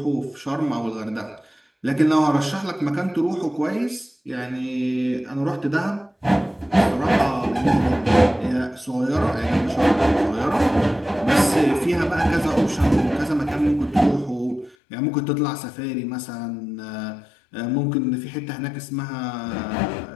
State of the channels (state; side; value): drops out; right; at 14.8 s